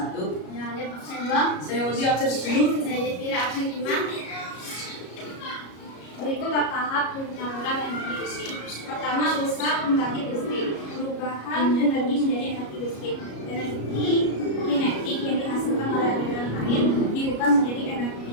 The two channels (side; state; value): right; late; 33 ms